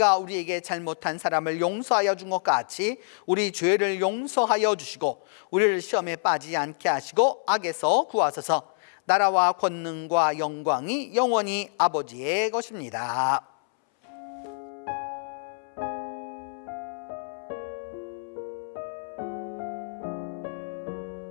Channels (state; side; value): silent; right; 60 dB below the other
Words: 우리에게 잘못한 사람을 용서하여 준 것 같이 우리 죄를 용서하여 주시고 우리를 시험에 빠지지 않게 하시고 악에서 구하소서. 나라와 권능과 영광이 영원히 아버지의 것입니다.